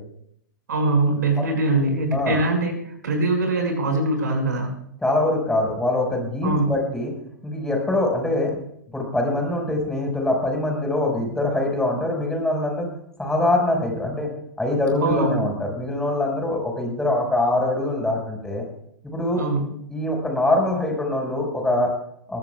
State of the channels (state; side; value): normal; both; correlation 0.15